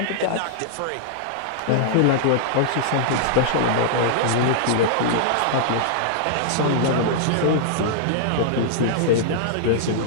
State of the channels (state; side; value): different; both; correlation -0.01